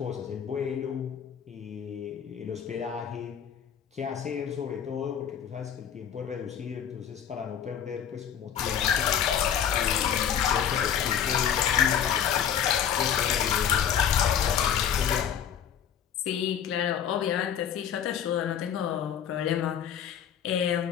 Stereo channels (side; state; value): right; quieter; 8.9 dB